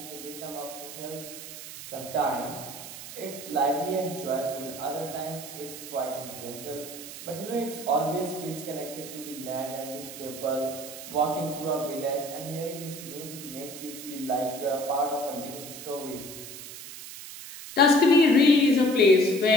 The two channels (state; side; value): noise; right; hiss, 12 dB below the sound